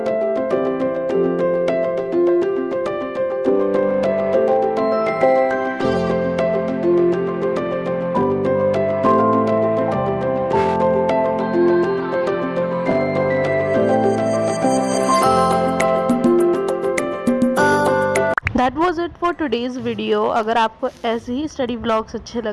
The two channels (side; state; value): both; identical; correlation 1.00